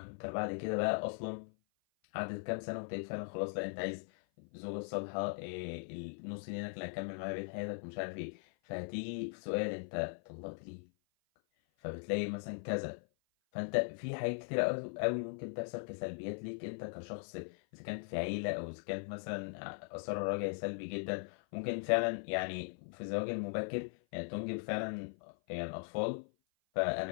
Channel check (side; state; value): right; silent; 52 dB below the other